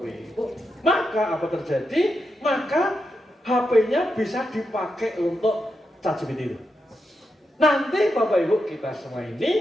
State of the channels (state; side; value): normal; both; correlation 0.86